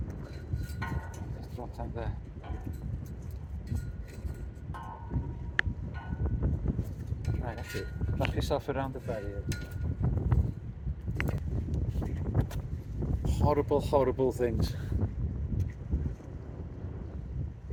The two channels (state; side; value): identical; both; correlation 1.00